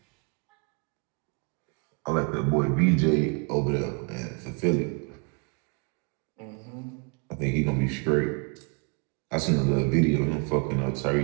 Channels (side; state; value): left; quieter; 35.7 dB